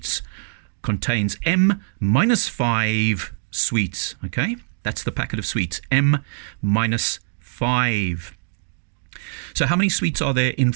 contains m minus 5 sweets. Okay, that's the packet of sweets, m minus 5. So how many sweets are there in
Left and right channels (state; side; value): silent; left; digital silence